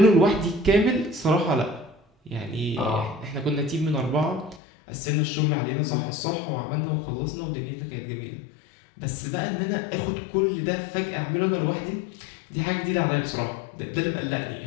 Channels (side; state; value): right; drops out; at 4.6 s